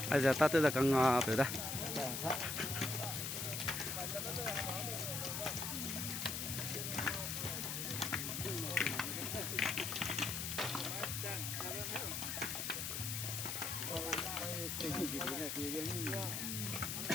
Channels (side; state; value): left; noise; hiss, 2 dB below the sound